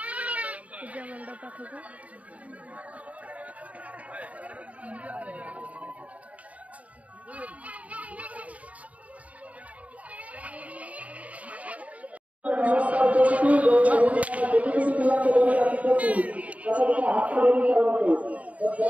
पूजा मंडप पाखक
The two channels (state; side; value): late; left; 0.068 ms